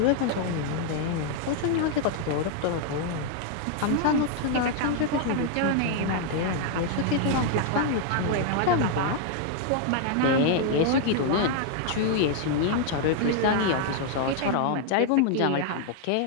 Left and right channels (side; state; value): both; different; correlation 0.00